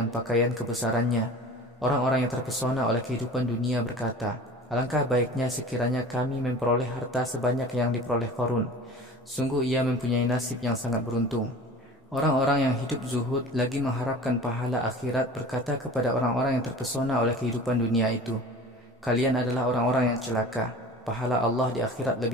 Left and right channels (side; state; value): both; normal; correlation 0.39